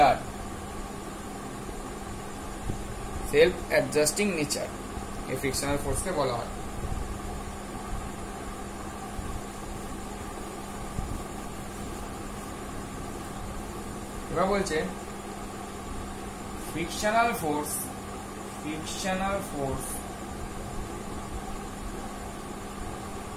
নেচার, এই ফ্রিকশনাল ফোর্সকে বলা হয়। এবার বলছে frictional force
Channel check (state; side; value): identical; both; correlation 1.00